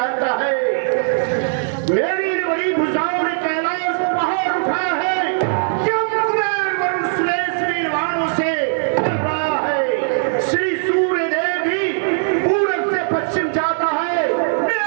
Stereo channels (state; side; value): silent; left; digital silence